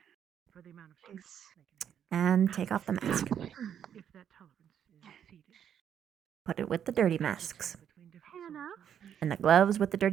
And take off the mask. Put it with the dirty masks. And the gloves with the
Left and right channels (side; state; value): left; quieter; 9.1 dB